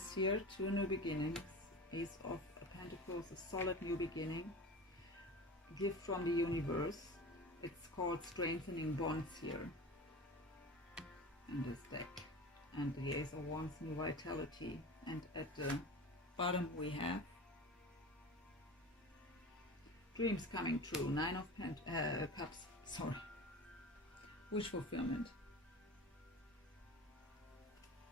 here, two new beginnings. Ace of Pentacles, a solid new beginning. Gift from the universe. It's called strengthening bonds here in this deck. And the Ace of Wands, new vitality. And at the bottom we have dreams coming true. Nine of Cups. Sorry. Wish fulfillment.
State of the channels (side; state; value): both; normal; correlation 0.33